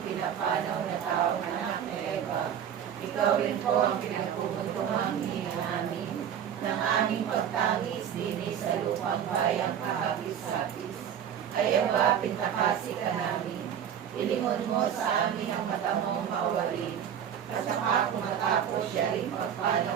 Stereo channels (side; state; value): left; quieter; 9.0 dB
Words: pinapanaw na taong anak na Eva. Ikaw rin po ang pinagpupuntungang hininga namin ng aming pagtangis din sa lupang bayang kahapis-hapis. Kaya ba pintakasi ka namin? Ilingon mo sa amin ang mata mong mawarin. At saka kung matapos siya rin